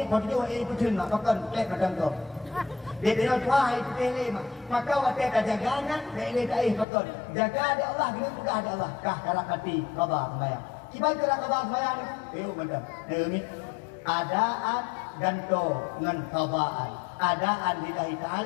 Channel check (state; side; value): drops out; right; at 6.9 s